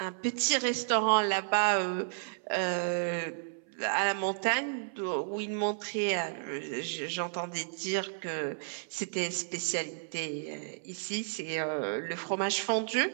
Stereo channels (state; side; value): silent; left; 56 dB below the other